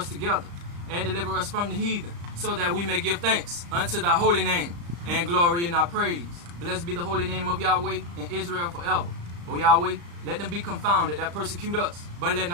together and deliver us from the heathen, so that we may give thanks unto thy holy name and glory in thy praise. Blessed be the holy name of Yahweh in Israel forever. O Yahweh, let them be confounded that persecute us, but let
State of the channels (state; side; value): late; left; 35 ms